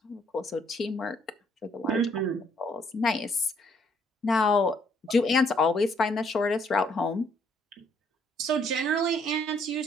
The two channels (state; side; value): normal; both; correlation 0.67